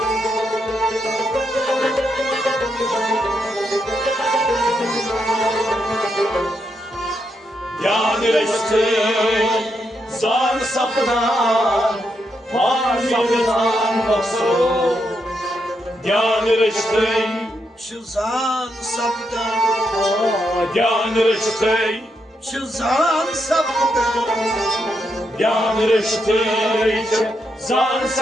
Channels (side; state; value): both; normal; correlation 0.81